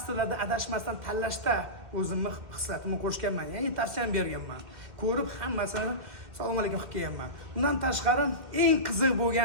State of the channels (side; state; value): left; late; 2.1 ms